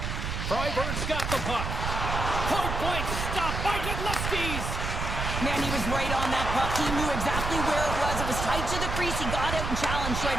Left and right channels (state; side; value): noise; right; rumble, 3 dB below the sound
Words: Freiburg's got the puck. Point blank stop by Godlewski's. Man, he was right on that puck. He knew exactly where it was. It was tight to the crease. He got out and challenged right